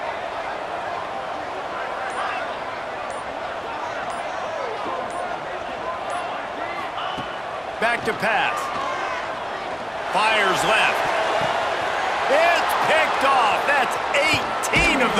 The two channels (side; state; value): both; identical; correlation 1.00